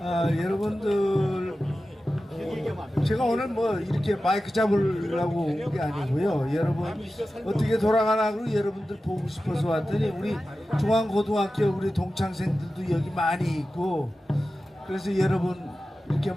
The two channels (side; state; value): both; normal; correlation 0.94